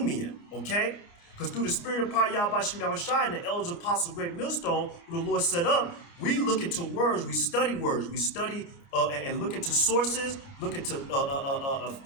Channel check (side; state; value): right; late; 29 ms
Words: Okay, because through the spirit of power, Yahweh Shem Shai and the elders of Apostle Great Millstone, who the Lord set up, we look into words, we study and look into sources, look into